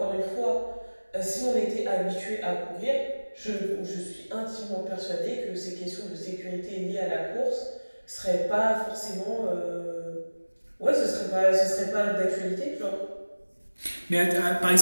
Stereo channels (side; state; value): both; inverted; correlation -1.00